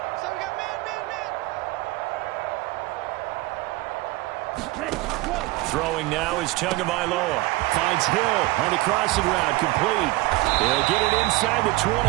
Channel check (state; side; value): quieter; left; 20.4 dB